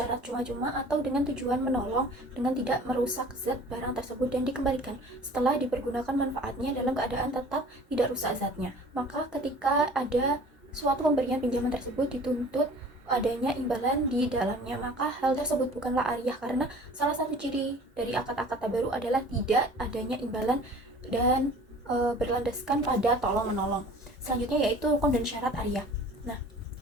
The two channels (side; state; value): both; normal; correlation 0.47